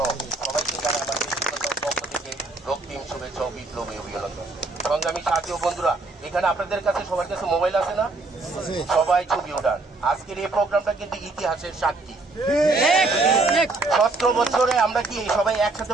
সবাইকে জানাই আমার ব্যক্তিগত পক্ষ থেকে রক্তিম শুভেচ্ছা ও বিপ্লবী অভিনন্দন। সংগ্রামী সাথী ও বন্ধুরা, এখানে আপনাদের কাছে সবার কাছে মোবাইল আছে না? সবাই ছবি ওঠান। আজকের এই প্রোগ্রামটা কিন্তু ইতিহাসের সাক্ষী। 17 বছরে আমরা কি সবাই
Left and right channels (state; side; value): quieter; left; 3.4 dB